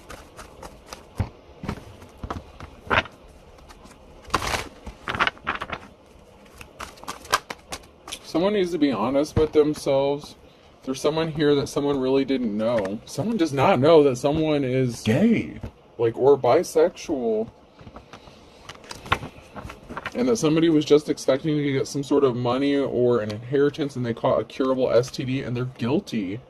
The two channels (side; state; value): both; identical; correlation 1.00